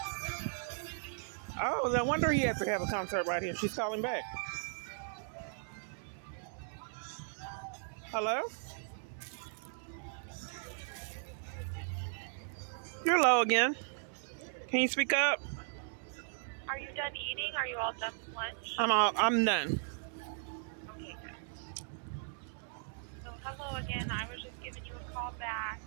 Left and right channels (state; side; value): silent; left; 53 dB below the other